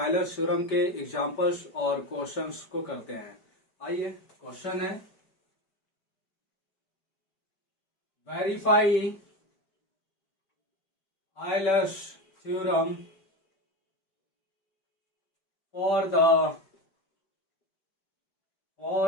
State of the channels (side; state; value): right; late; 5.2 ms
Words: थ्योरम के एग्जांपल्स और क्वेश्चंस को करते हैं। आइए, क्वेश्चन है verify Euler's theorem for